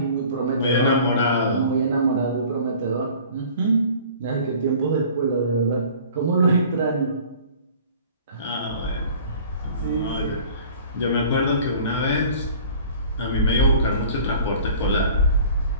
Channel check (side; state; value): both; inverted; correlation -0.47